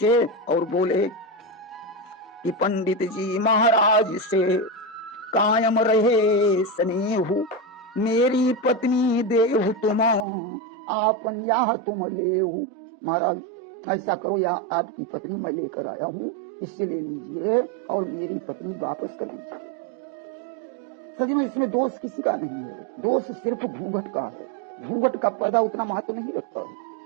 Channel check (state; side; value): drops out; left; at 10.2 s